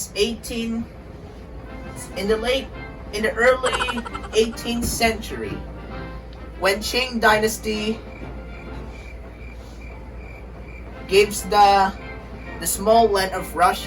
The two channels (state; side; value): identical; both; correlation 1.00